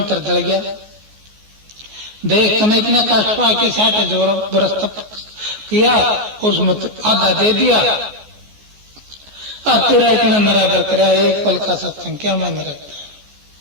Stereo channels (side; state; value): left; late; 14 ms